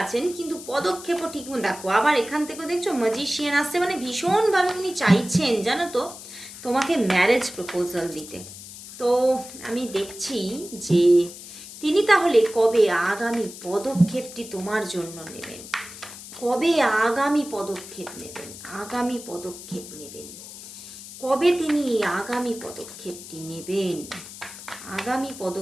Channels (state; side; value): noise; left; hiss, 14 dB below the sound